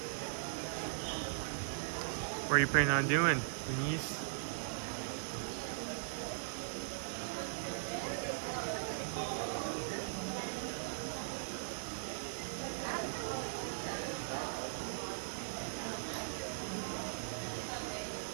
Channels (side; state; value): left; silent; digital silence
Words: What are you planning on doing, Denise?